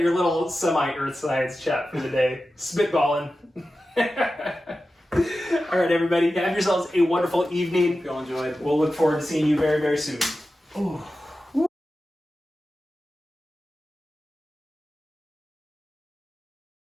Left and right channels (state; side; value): normal; both; correlation 0.93